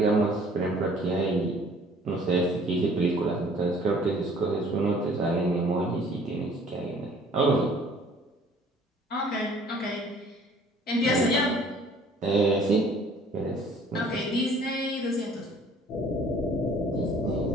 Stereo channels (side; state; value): both; normal; correlation 0.54